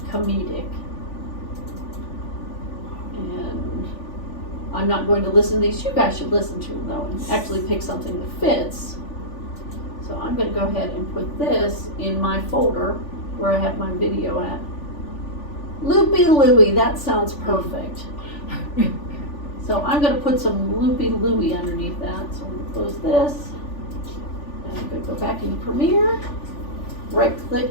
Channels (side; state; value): right; late; 3.4 ms